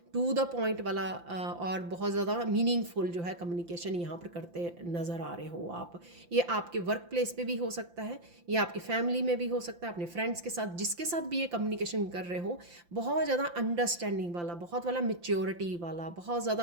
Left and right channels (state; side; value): late; left; 5.8 ms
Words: टू द पॉइंट वाला, और बहुत ज़्यादा मीनिंगफुल जो है कम्युनिकेशन यहाँ पर करते नज़र आ रहे हो आप। ये आपके वर्क प्लेस पे भी हो सकता है, ये आपकी फैमिली में भी हो सकता है, अपने फ्रेंड्स के साथ, जिसके साथ भी ये कम्युनिकेशन कर रहे हो। बहुत ज़्यादा अंडरस्टैंडिंग वाला, बहुत वाला मेच्योरिटी वाला, बहुत